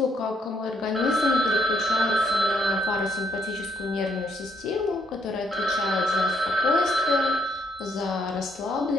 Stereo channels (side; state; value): both; normal; correlation 0.72